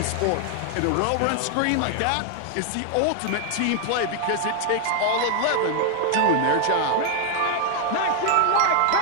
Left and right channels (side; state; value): both; different; correlation 0.00